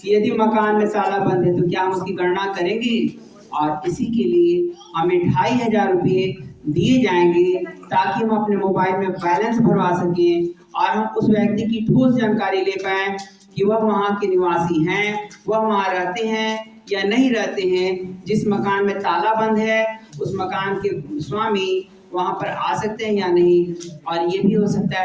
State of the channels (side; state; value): both; identical; correlation 1.00